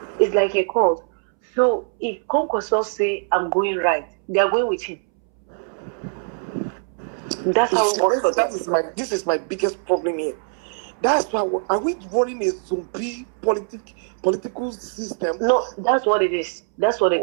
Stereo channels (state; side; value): silent; left; 64 dB below the other